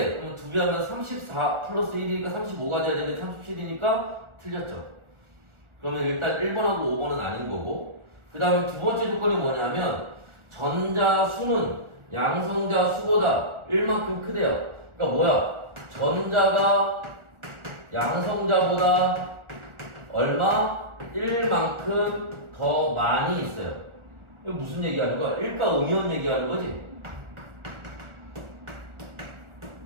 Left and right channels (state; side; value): late; left; 1.4 ms